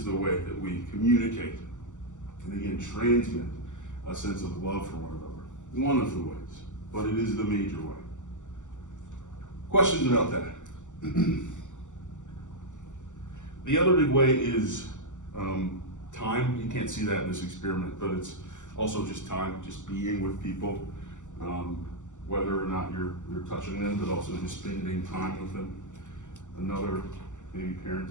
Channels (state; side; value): late; right; 0.86 ms